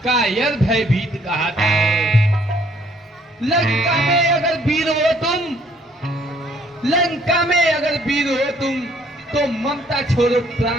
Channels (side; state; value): both; normal; correlation 0.63